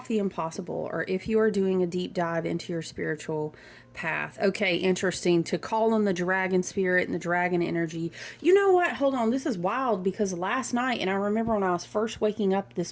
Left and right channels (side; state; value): both; identical; correlation 1.00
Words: the impossible, or if you are doing a deep dive into your spiritual path. Okay, interesting. To call on the dragon spirit and the dragon energy. You know what? Hold on. This is wild, because last night, and I remember when I was first waking up this